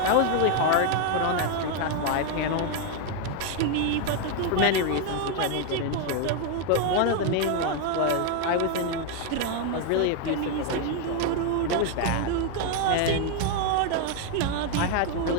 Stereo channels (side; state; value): both; different; correlation 0.01